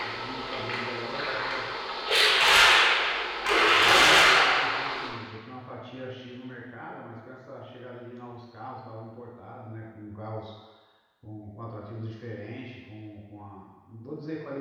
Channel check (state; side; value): identical; both; correlation 1.00